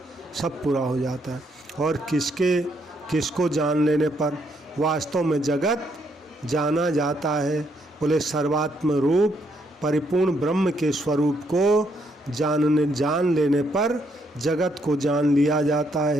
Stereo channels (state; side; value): normal; both; correlation 0.74